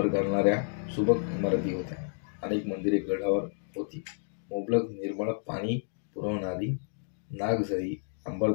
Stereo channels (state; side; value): silent; right; digital silence